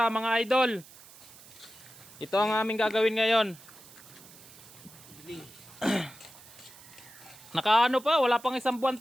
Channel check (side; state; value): right; noise; hiss, 20 dB below the sound